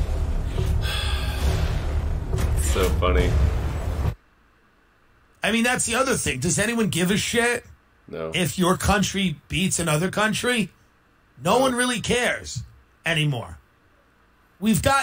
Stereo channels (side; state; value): both; identical; correlation 1.00